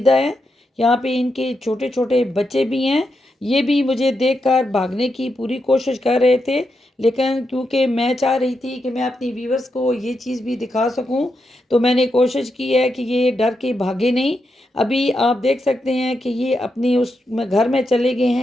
हैं। यहाँ पे इनके छोटे छोटे बच्चे भी हैं। ये भी मुझे देखकर भागने की पूरी कोशिश कर रहे थे, लेकिन क्योंकि मैं चाह रही थी कि मैं अपनी व्यूवर्स को ये चीज़ भी दिखा सकूं, तो मैंने कोशिश की है कि ये डर के भागे नहीं। अभी आप देख सकते हैं कि ये अपनी उस घर में चले गए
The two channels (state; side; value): normal; both; correlation 0.85